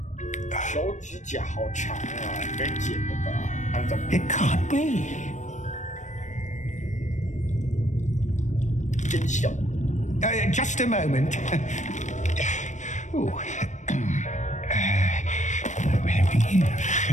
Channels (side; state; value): right; late; 0.35 ms